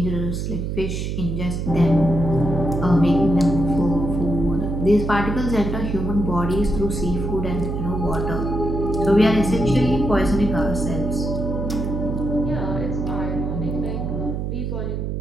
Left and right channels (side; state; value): right; noise; hum, 3 dB below the sound